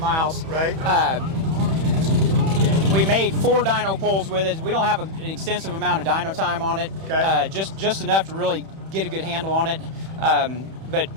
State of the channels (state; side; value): late; left; 31 ms